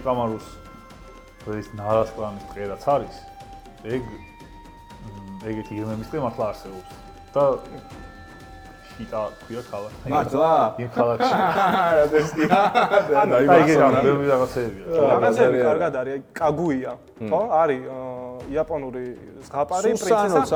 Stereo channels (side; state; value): both; identical; correlation 1.00